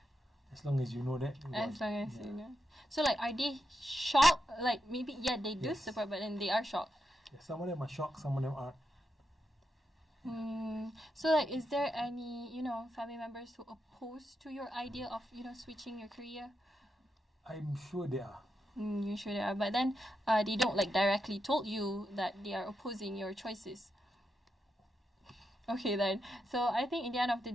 as long as you know that. As long as you know. So like, are they shocked? Like maybe they do support, but then they are shocked. Yeah, some of them are shocked, some of them aren't. So like, is there any family members who oppose to your idea of switching your career? I'm sure they are. You sure they are, but then they don't like directly told you that they are opposing your choices. Okay then. So I think in the end of the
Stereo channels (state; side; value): normal; both; correlation 0.85